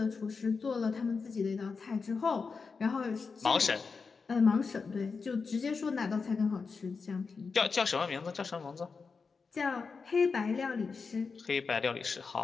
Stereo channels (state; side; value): quieter; right; 4.9 dB